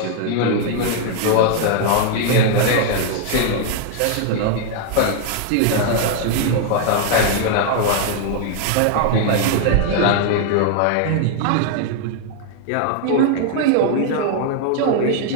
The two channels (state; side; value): different; both; correlation 0.00